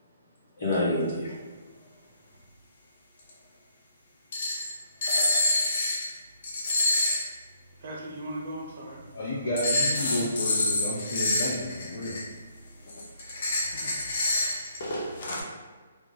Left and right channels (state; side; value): inverted; both; correlation -0.66